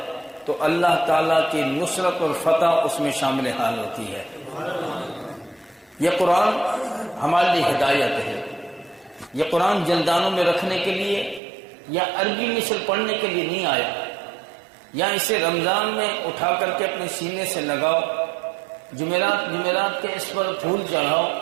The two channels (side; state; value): left; drops out; at 11.4 s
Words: تو اللہ تعالیٰ کی نصرت اور فتح اس میں شامل حال ہوتی ہے۔ یہ قرآن ہمارے لیے ہدایت ہے۔ یہ قرآن جلدانوں میں رکھنے کے لیے یا عربی مثل پڑھنے کے لیے نہیں آیا، یا اسے رمضان میں اٹھا کر کے اپنے سینے سے لگاؤ، جمعرات کے اس پر پھول چڑھاؤ،